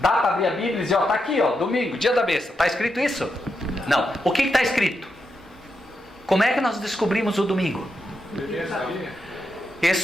para abrir a Bíblia e dizer, ó, tá aqui, ó, domingo, dia da besta. Está escrito isso? Não. O que está escrito? Como é que nós descobrimos o domingo?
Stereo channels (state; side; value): normal; both; correlation 0.85